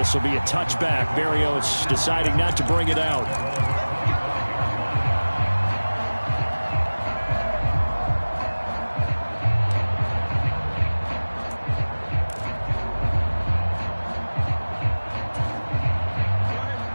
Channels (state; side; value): inverted; both; correlation -1.00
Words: will be a touchback. Berrios deciding not to bring it out.